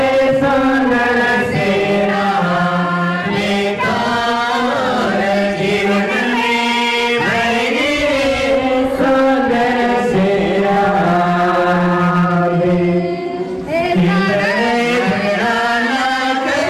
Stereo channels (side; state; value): both; identical; correlation 1.00